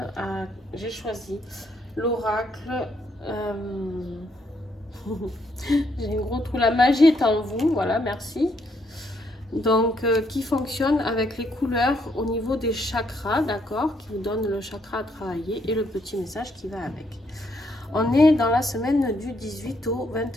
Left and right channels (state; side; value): normal; both; correlation 0.73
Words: J'ai choisi l'oracle. J'ai un gros trou, la magie est en vous, voilà, merci. Donc, qui fonctionne avec les couleurs au niveau des chakras, d'accord, qui vous donne le chakra à travailler et le petit message qui va avec. On est dans la semaine du 18 au